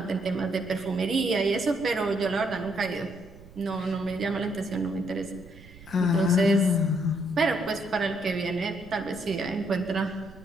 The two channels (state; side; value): noise; right; rumble, 20 dB below the sound